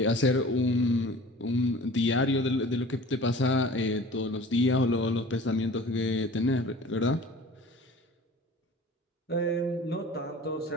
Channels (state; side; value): normal; both; correlation 0.43